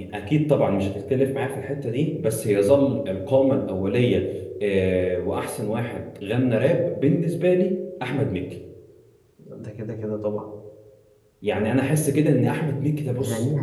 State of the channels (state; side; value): identical; both; correlation 1.00